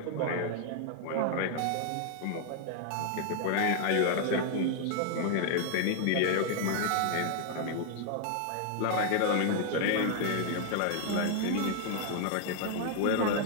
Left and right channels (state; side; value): different; both; correlation 0.00